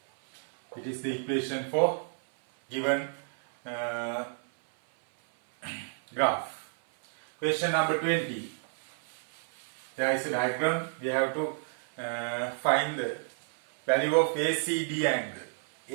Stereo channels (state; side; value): silent; left; 58 dB below the other